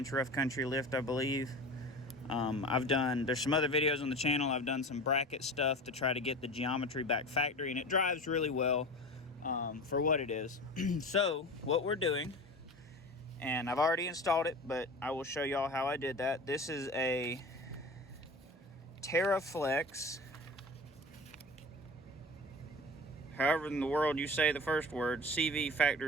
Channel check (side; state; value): both; normal; correlation 0.34